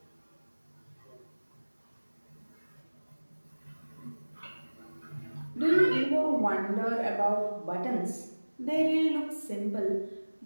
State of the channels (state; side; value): inverted; both; correlation -1.00